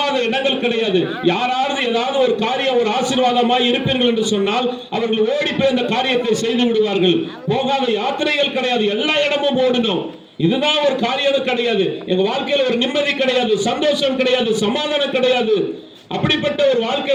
இடங்கள் கிடையாது. யாராவது ஏதாவது ஒரு காரியம் ஒரு ஆசீர்வாதமாய் இருப்பீர்கள் என்று சொன்னால் அவர்கள் ஓடி போய் அந்த காரியத்தை செய்து விடுவார்கள். போகாத யாத்திரைகள் கிடையாது, எல்லா இடமும் ஓடணும். இதுதான் ஒரு காரியம் கிடையாது. எங்க வாழ்க்கையில ஒரு நிம்மதி கிடையாது, சந்தோஷம் கிடையாது, சமாதானம் கிடையாது. அப்படிப்பட்ட ஒரு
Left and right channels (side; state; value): both; identical; correlation 1.00